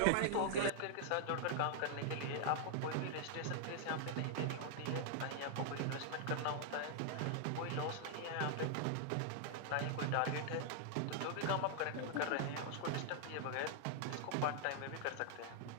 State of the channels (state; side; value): different; both; correlation -0.01